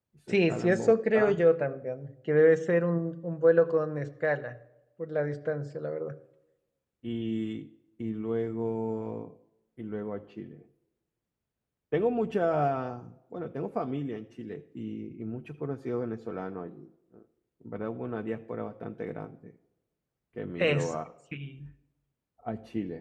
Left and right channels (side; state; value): both; identical; correlation 1.00